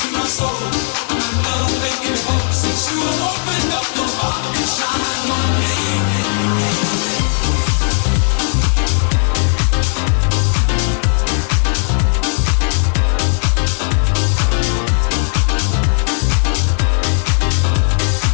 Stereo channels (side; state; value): right; silent; 66 dB below the other